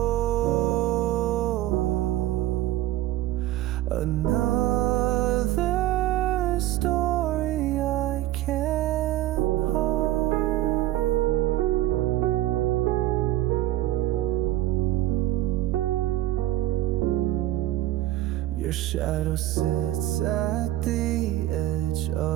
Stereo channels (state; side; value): quieter; left; 14.8 dB